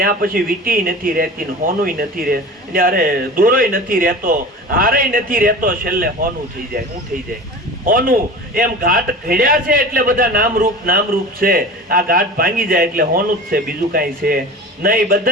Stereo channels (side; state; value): both; normal; correlation 0.35